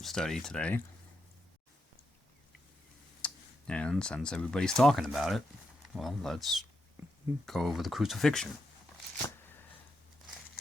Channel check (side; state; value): both; normal; correlation 0.84